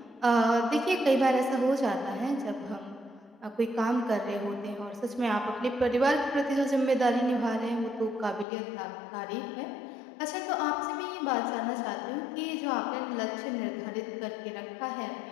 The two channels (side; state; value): right; drops out; at 8.5 s